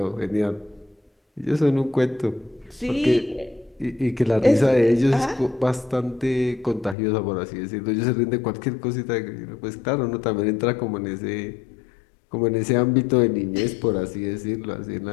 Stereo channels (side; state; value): right; drops out; at 7.0 s